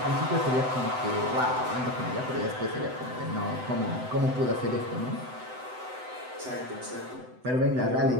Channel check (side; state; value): left; late; 7.9 ms